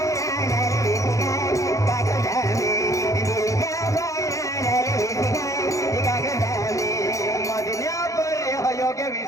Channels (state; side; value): late; right; 0.15 ms